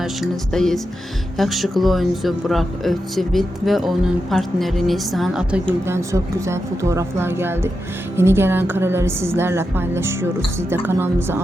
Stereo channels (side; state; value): both; normal; correlation 0.88